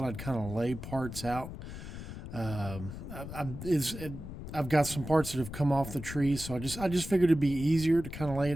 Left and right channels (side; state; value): left; noise; rumble, 10 dB below the sound